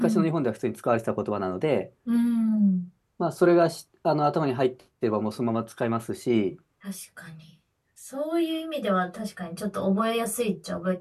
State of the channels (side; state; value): both; identical; correlation 1.00